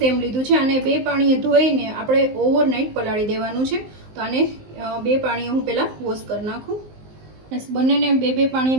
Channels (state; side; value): late; left; 19 ms